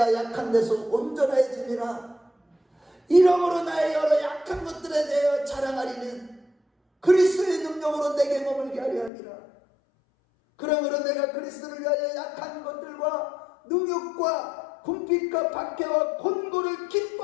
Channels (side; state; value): right; drops out; at 9.1 s